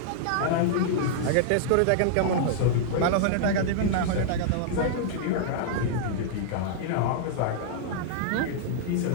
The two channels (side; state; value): both; different; correlation -0.01